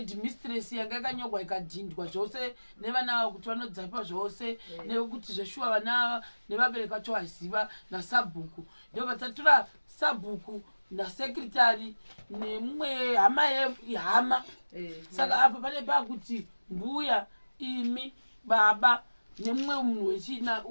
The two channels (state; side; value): inverted; both; correlation -1.00